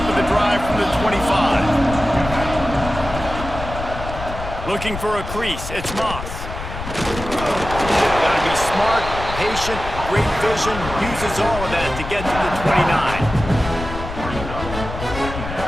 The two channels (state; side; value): noise; left; rumble, 8 dB below the sound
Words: of the drive from the 25. Looking for a crease. It's Moss. Got to be smart, patient, great vision, uses all of that to get to the 29.